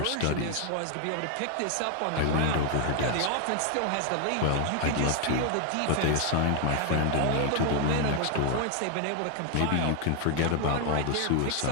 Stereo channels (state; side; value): different; both; correlation 0.00